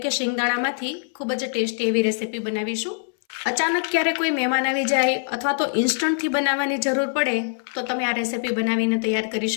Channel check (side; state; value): right; silent; 63 dB below the other